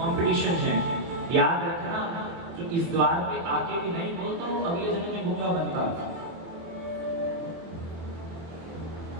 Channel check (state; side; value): late; left; 24 ms